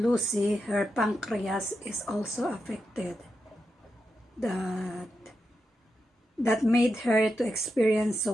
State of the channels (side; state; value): both; normal; correlation 0.87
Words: her pancreas is also affected. That that made her to experience